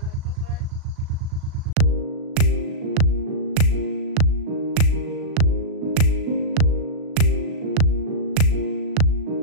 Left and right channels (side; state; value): left; late; 36 ms